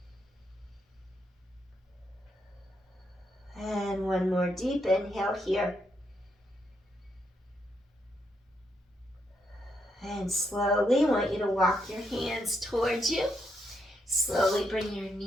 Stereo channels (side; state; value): both; normal; correlation 0.79